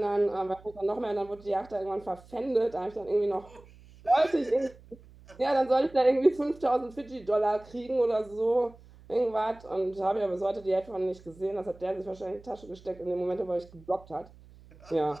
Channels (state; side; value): noise; right; hum, 23 dB below the sound